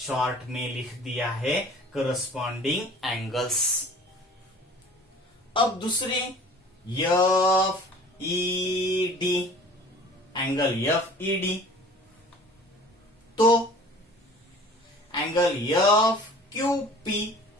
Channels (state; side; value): normal; both; correlation 0.46